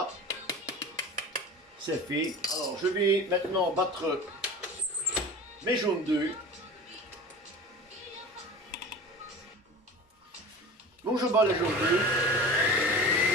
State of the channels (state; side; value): normal; both; correlation 0.36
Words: c'est fait. Alors je vais maintenant battre mes jaunes d'œufs. Donc je bats les jaunes d'œufs.